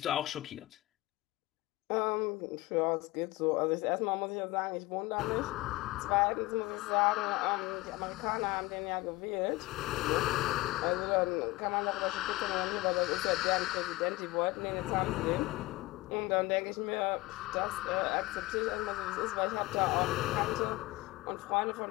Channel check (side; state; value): right; quieter; 20.2 dB